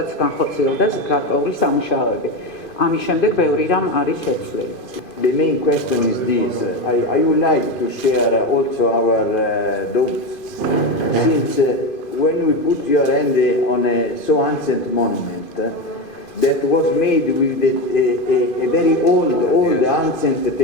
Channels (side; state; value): right; late; 2.5 ms